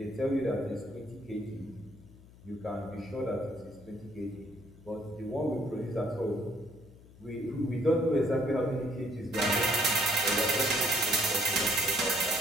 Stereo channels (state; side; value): noise; left; hum, 22 dB below the sound